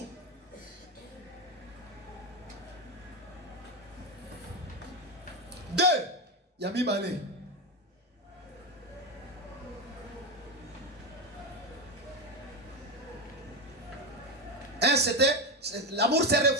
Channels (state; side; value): normal; both; correlation 0.13